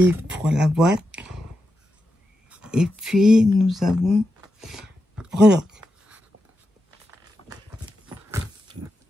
pour la boîte. Et puis, nous avons breloque.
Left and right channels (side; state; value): both; normal; correlation 0.88